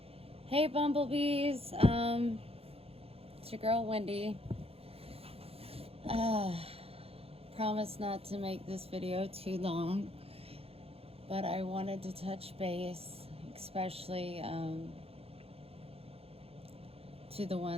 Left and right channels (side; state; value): left; late; 0.28 ms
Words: Hey, bumblebees. It's your girl, Wendy. Promise not to make this video too long, but I wanted to touch base, especially to the